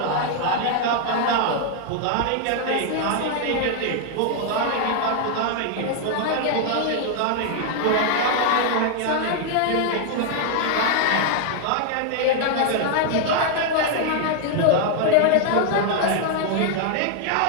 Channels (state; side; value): different; both; correlation 0.00